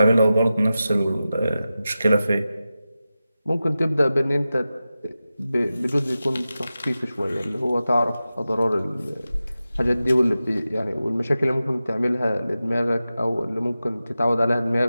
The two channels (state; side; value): inverted; both; correlation -0.93